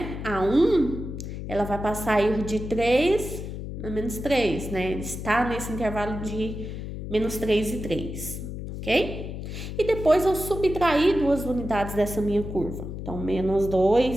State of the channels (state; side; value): noise; left; hum, 7 dB below the sound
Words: a 1, ela vai passar a ir de 3 a menos 3, né? Está nesse intervalo de menos 3 e 3, ok? E depois eu subtraí duas unidades dessa minha curva. Então, menos